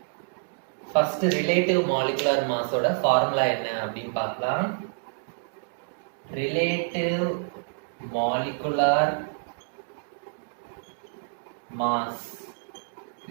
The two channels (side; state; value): left; silent; digital silence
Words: First relative molecular mass ஓட ஃபார்முலா என்ன அப்படின்னு பார்க்கலாம். Relative molecular mass